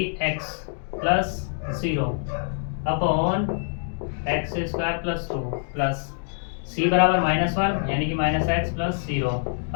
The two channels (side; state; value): right; silent; digital silence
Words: x plus 0 upon X square plus 2 plus c बराबर माइनस 1 यानी कि minus x plus 0